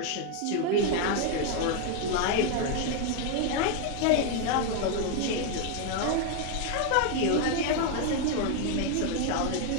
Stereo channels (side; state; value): both; different; correlation 0.01